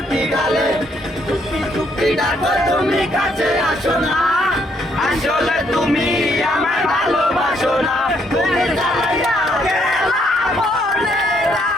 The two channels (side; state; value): both; normal; correlation 0.71